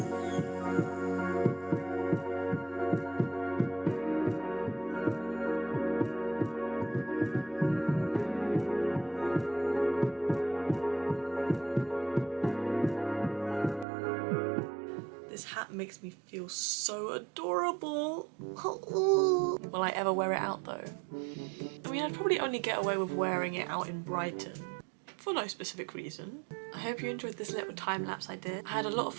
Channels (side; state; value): left; drops out; at 13.9 s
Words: This hat makes me feel so adorable. Will I ever wear it out though? I mean, I'd probably only get away with wearing it out in Brighton for no specific reason. I hope you enjoyed this little time lapse I did. I had a lot of